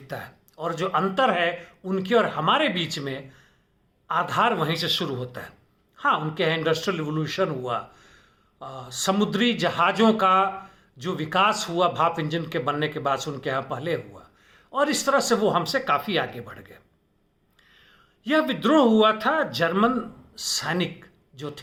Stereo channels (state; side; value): identical; both; correlation 1.00